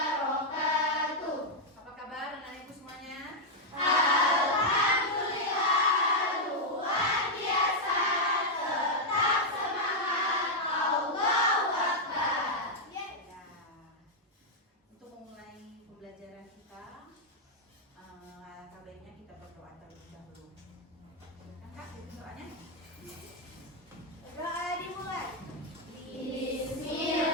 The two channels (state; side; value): normal; both; correlation -0.02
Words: Apa kabar anak ibu semuanya? Alhamdulillah, luar biasa. Tetap semangat. Allahu Akbar. Ya. Untuk memulai pembelajaran kita, alangkah baiknya kita berdoa terlebih dahulu. Silakan Kak, itu doanya. Doa dimulai.